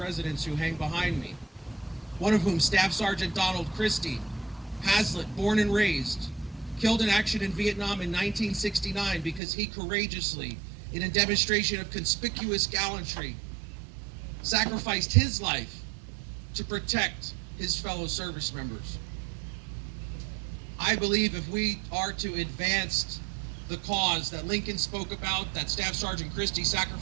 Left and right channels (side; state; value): left; drops out; at 9.4 s